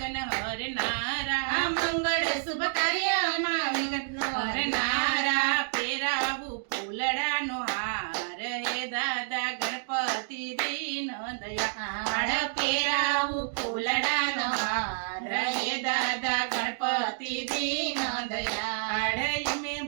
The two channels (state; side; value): silent; left; digital silence